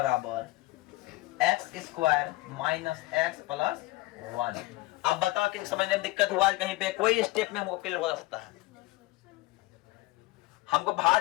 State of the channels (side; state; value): right; quieter; 20.2 dB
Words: x square minus x plus 1। अब बताओ कि समझने में दिक्कत हुआ कहीं पे, कोई स्टेप में हमको क्लियर हो सकता है। हमको